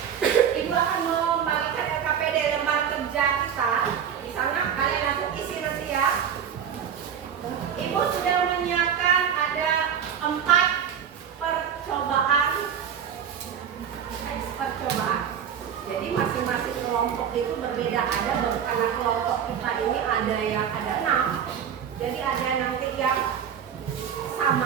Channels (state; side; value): quieter; left; 8.4 dB